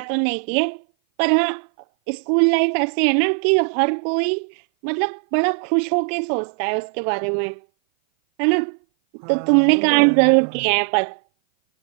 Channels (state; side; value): silent; left; 57 dB below the other